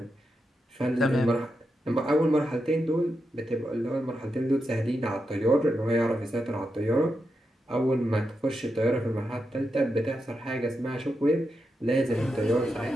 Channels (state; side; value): normal; both; correlation 0.86